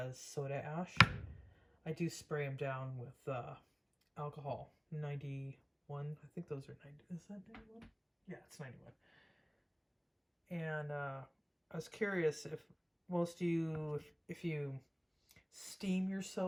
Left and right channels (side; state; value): both; identical; correlation 1.00